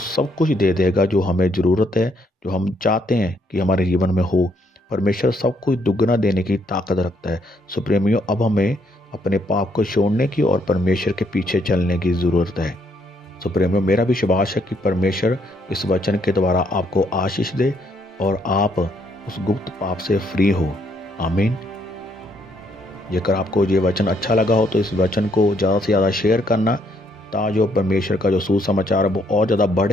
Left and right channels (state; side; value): normal; both; correlation 0.71